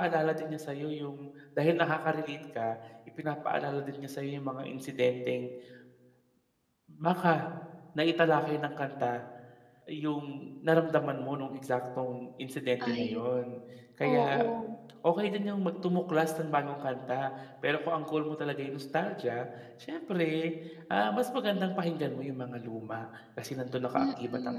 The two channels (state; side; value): identical; both; correlation 1.00